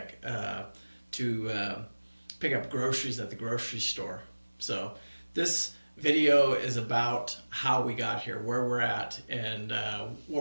to pick up groceries at the grocery store. So this video is about how we got here, where we're at, and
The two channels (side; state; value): both; inverted; correlation -1.00